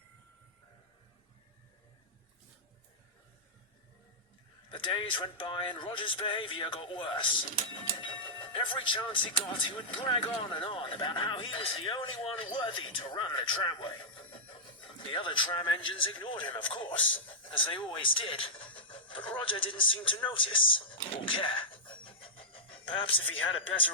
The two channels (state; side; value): normal; both; correlation -0.10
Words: The days went by and Rodger's behaviour got worse. Every chance he got, he would brag on and on about how he was the only one worthy to run the tramway. The other tram engines ignored him, of course, as they always did, but Rodger didn't seem to notice or care. Perhaps if he had a